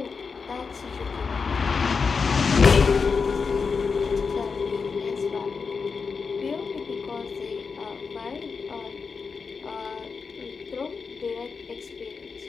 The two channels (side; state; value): right; quieter; 5.2 dB